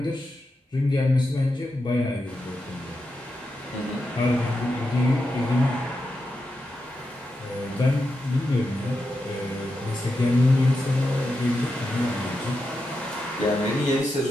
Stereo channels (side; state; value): both; normal; correlation 0.87